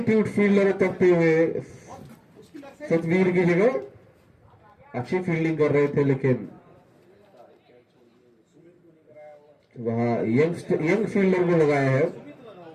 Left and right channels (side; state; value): both; identical; correlation 1.00